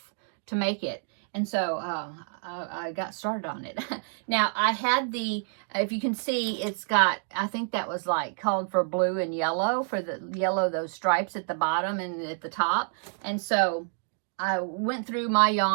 to make it. And so I got started on it. Now, I had the, if you can see, it's got, I think that was like called for blue and yellow, for the yellow, those stripes at the bottom and at the top. And so I went through my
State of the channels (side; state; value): left; silent; 59 dB below the other